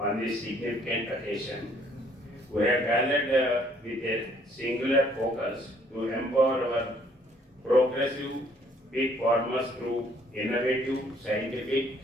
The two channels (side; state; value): both; normal; correlation 0.63